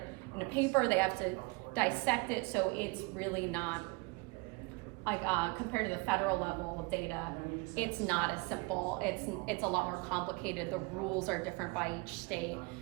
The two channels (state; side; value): quieter; left; 27.6 dB